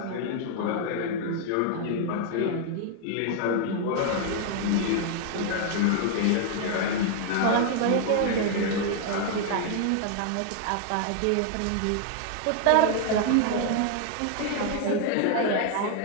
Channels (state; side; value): different; both; correlation 0.00